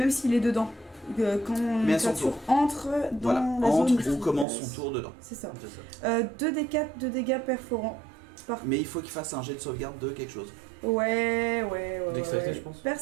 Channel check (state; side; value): drops out; left; at 4.5 s